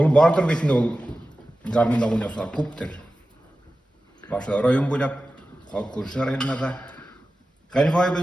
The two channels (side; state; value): both; normal; correlation 0.94